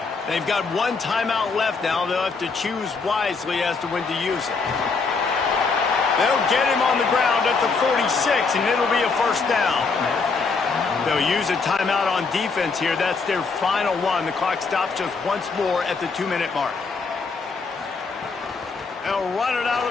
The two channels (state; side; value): quieter; right; 4.6 dB